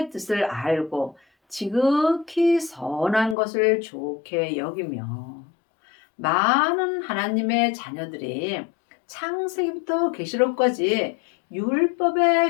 뜻을 알고 지극히 선한 것을 좋게 여기며 많은 하나님의 자녀들이 창세기부터 계시록까지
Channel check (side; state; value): right; drops out; at 3.4 s